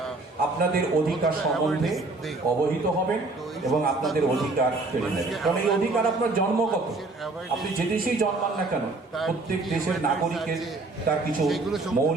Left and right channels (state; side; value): quieter; left; 3.3 dB